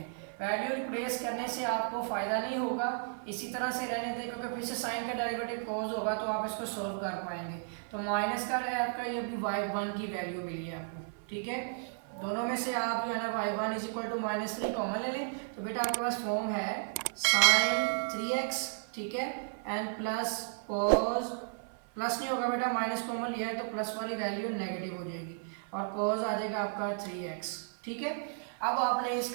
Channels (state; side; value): silent; left; 55 dB below the other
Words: वैल्यू रिप्लेस करने से आपको फ़ायदा नहीं होगा, इसी तरह से रहने दें, क्योंकि फिर से साइन का डेरिवेटिव cos होगा तो आप इसको सोल्व कर पाएंगे। तो माइनस का है आपका, ये भी y1 की वैल्यू मिली है आपको, ठीक है। दोनों में से आप जो है ना y1 is equal to -3 common ले लें, तो बेटा आपके पास फॉर्म है साइन 3x, ठीक है, एंड प्लस cos, प्लस नहीं होगा बेटा, माइनस कॉमन लिया है तो प्लस वाली वैल्यू नेगेटिव हो जाएगी, और cos आ जाएगा आपका 3x, ठीक है। अब आपने